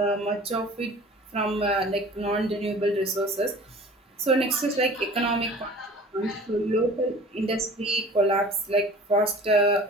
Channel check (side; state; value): both; normal; correlation 0.44